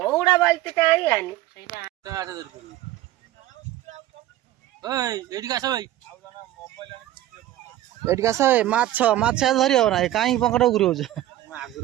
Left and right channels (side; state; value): left; quieter; 14.2 dB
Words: बाल्टी आनी माछ माछ धरी हो ना कहीं पंकट घूर